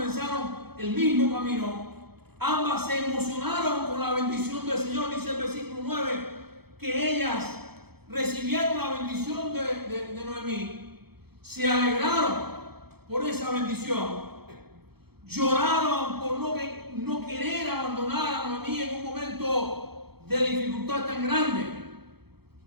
el mismo camino, ambas se emocionaron con la bendición del Señor. Dice el versículo 9 que ellas recibieron la bendición de Noemí, se alegraron por esa bendición, lloraron por no querer abandonar a Noemí en un momento de dificultad tan grande.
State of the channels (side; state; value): left; late; 0.96 ms